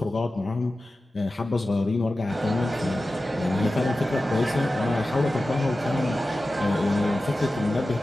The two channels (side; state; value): both; normal; correlation 0.94